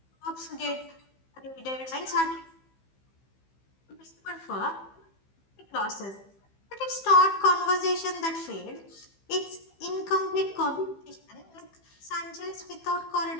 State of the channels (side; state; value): right; late; 15 ms